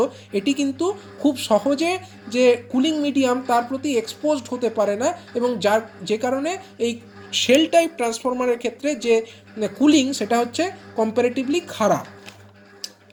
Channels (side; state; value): both; identical; correlation 1.00